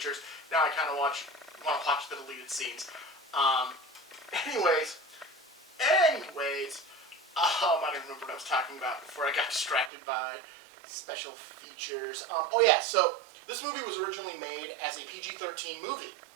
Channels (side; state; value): left; drops out; at 9.9 s